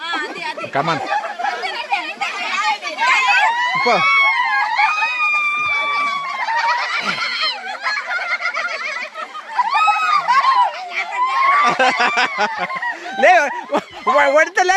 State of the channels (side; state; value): both; identical; correlation 1.00